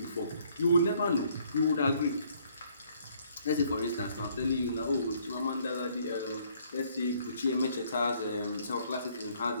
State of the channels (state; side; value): inverted; both; correlation -0.64